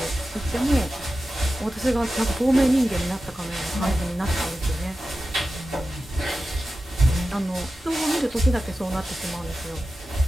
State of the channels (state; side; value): normal; both; correlation 0.93